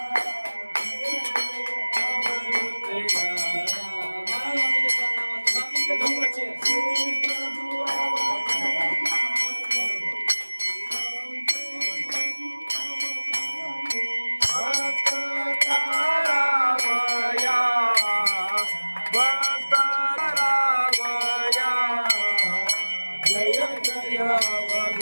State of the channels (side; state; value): both; inverted; correlation -1.00